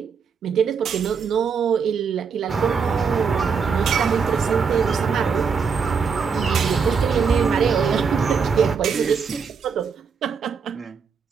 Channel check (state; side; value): quieter; left; 5.9 dB